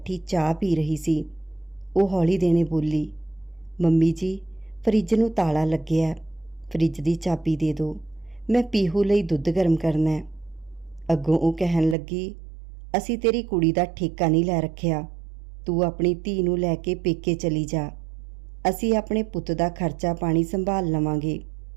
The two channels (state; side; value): drops out; left; at 12.0 s